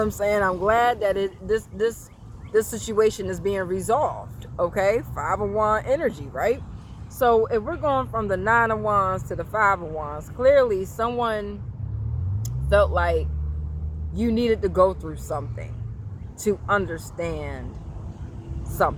saying? I'm glad that this situation is being resolved, okay? 5 of Wands energy, right? So if we're going from the 9 of Wands to the 5 of Wands, clearly someone felt like you needed to go through something to understand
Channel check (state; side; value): identical; both; correlation 1.00